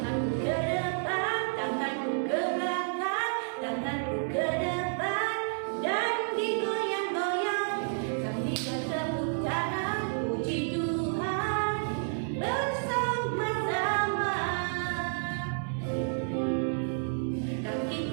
ke depan, tanganku ke belakang, tanganku ke depan, dan digoyang-goyang sambil bertepuk tangan puji Tuhan bersama-sama.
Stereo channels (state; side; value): silent; left; digital silence